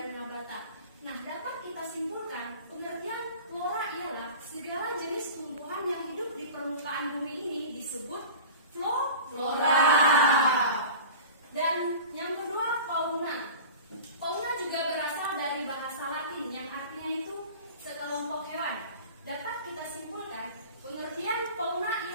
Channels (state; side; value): inverted; both; correlation -0.37